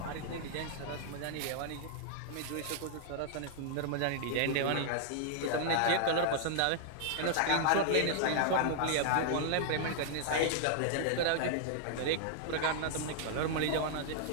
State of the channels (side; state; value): both; different; correlation -0.01